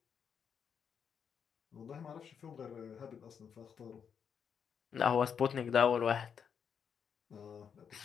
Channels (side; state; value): right; quieter; 7.2 dB